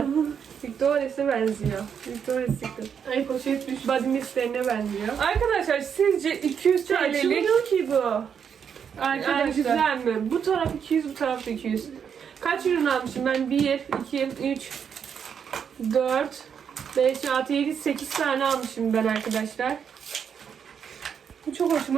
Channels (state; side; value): quieter; left; 7.4 dB